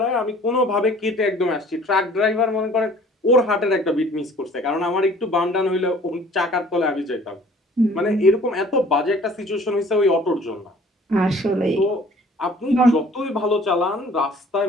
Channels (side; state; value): both; normal; correlation 0.52